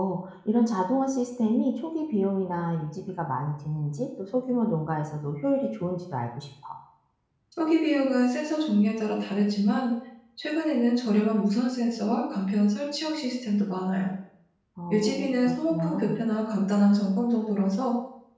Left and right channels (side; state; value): both; identical; correlation 1.00